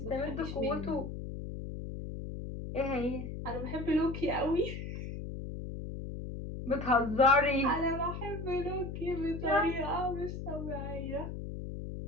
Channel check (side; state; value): left; noise; hum, 7 dB below the sound